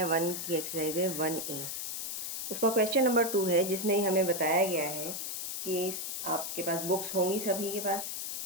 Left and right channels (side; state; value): left; noise; hiss, 4 dB below the sound